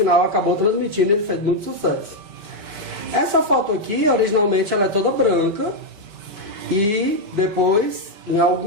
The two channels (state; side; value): late; left; 4.9 ms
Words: acabou transmitindo, ele fez muito sucesso. Essa foto aqui, originalmente, ela é toda branca, e depois, em